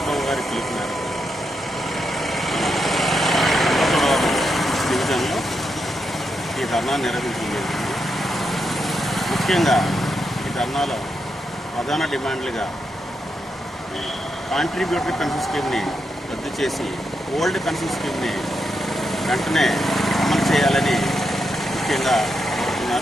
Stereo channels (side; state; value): both; normal; correlation 0.84